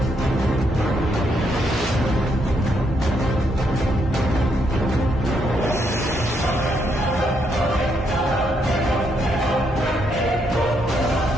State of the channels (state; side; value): normal; both; correlation 0.76